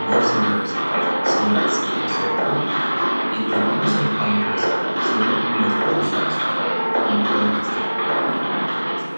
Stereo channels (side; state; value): both; inverted; correlation -1.00